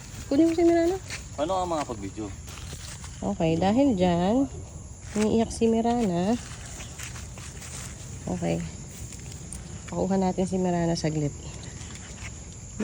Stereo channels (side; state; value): both; identical; correlation 1.00